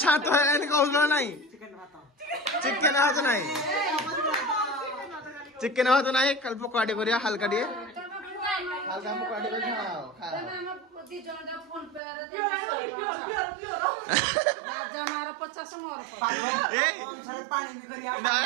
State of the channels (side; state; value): left; drops out; at 12.0 s